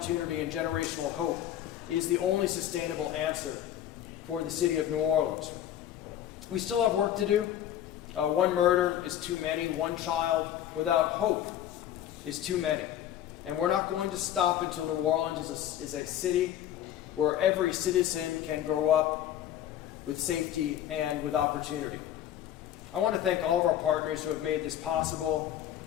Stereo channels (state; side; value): quieter; right; 11.4 dB